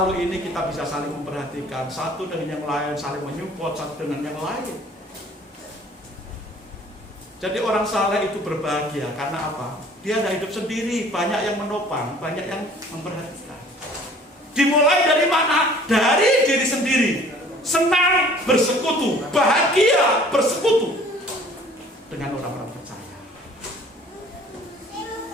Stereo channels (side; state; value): both; normal; correlation 0.52